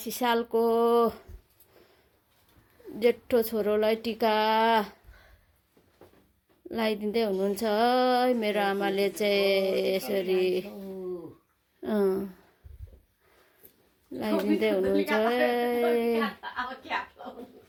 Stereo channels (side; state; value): both; identical; correlation 1.00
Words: सालको जेठो छोरोलाई टिका लगाइदिँदै हुनुहुन्छ है। मेरो आमाले चाहिँ यसरी लगाइदिँदै हुनुहुन्छ।